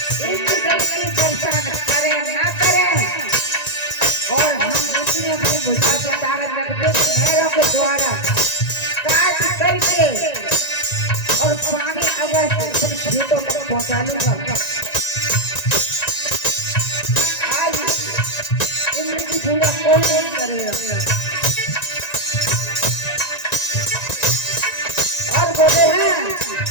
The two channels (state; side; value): late; right; 1.9 ms